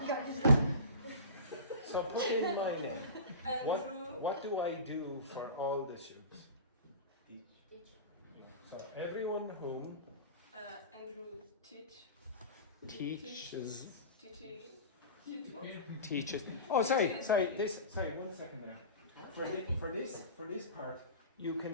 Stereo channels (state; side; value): inverted; both; correlation -0.32